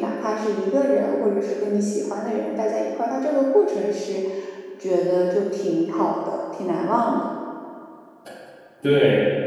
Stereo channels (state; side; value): identical; both; correlation 1.00